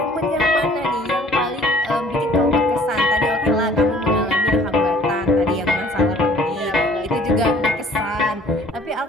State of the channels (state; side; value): normal; both; correlation 0.54